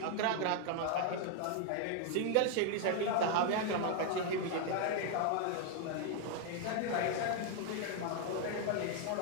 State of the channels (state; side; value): different; both; correlation 0.00